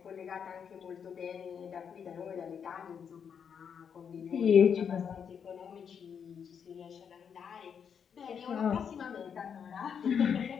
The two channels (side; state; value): right; quieter; 7.3 dB